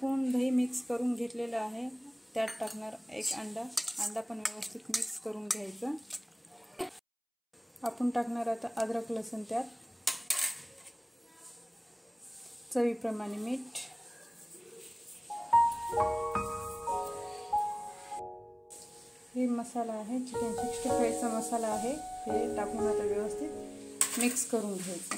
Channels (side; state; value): both; identical; correlation 1.00